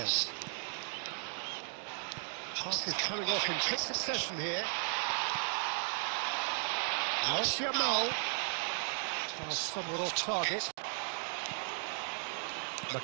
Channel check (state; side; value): silent; left; 54 dB below the other